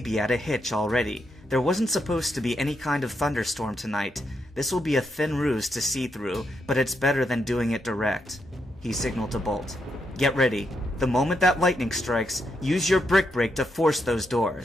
at a hitch already. There wasn't supposed to be any kind of thunderstorm tonight. This will be a thin ruse to see through, but it's better than doing it direct." He signaled to Bolt. "Get ready. The moment that lightning strikes, use your brick break to force those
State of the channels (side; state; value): both; normal; correlation 0.81